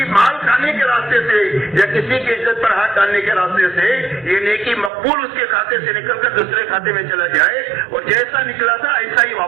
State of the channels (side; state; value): left; drops out; at 4.9 s